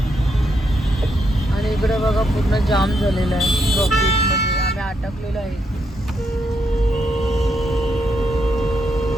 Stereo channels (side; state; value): both; normal; correlation 0.79